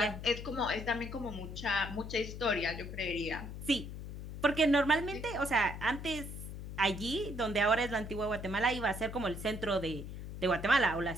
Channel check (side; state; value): left; noise; hum, 9 dB below the sound